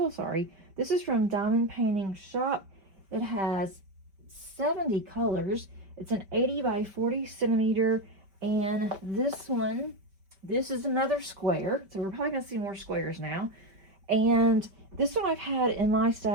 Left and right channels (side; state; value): left; late; 5.2 ms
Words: sorry. This is from Diamond Painting Shop. It has 70 colors. It's an 80 by 40 centimeter. And this is another square. So we're probably going to see more squares now. And this one I've had in my